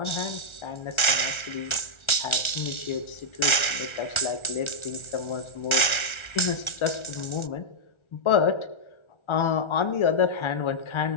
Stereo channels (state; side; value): late; right; 1.4 ms